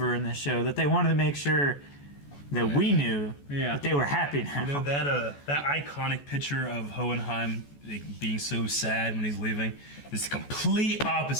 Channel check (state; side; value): late; right; 14 ms